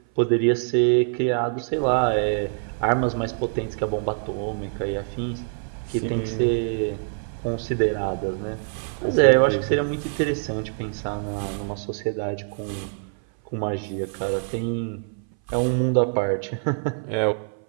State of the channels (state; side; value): silent; left; 59 dB below the other